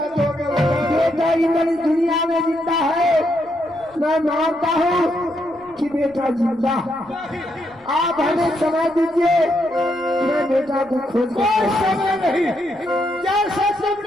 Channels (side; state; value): left; noise; rumble, 29 dB below the sound